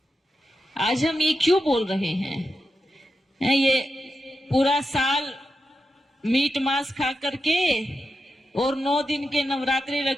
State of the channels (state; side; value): normal; both; correlation 0.89